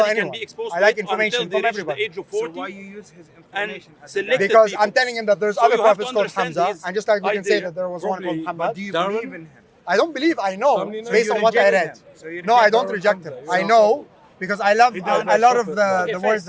Nobody can anyone. be exposed I to like it information until from they reach everybody. the age of So 40. why you use his And information as select a Because people. I'm telling him that there's So other you have to prophets called understand Hamza, his and just like we can say idea that there was one called properly. Muhammad. do you Darwin? believe in him? I don't believe. I know So based you on what I reject read. him. So you No, I reject don't Darwin reject Hamza. him. You I don't know because I love a lot of the Okay, words first,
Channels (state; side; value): identical; both; correlation 1.00